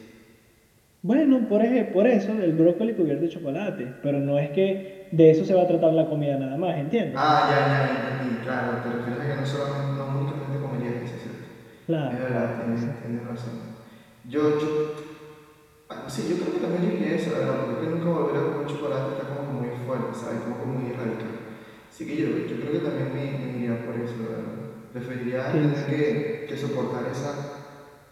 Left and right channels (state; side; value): identical; both; correlation 1.00